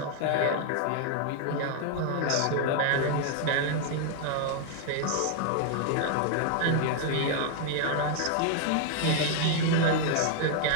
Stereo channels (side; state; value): both; different; correlation 0.00